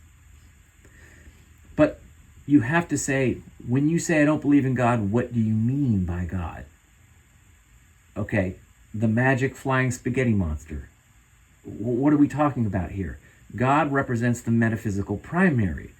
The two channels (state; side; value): identical; both; correlation 1.00